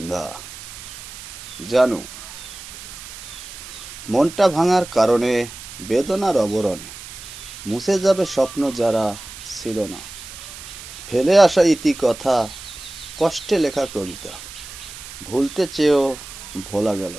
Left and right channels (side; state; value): right; noise; hiss, 13 dB below the sound